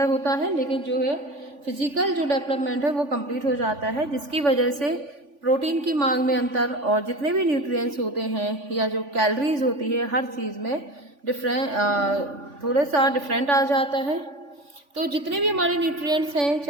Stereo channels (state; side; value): late; left; 3.5 ms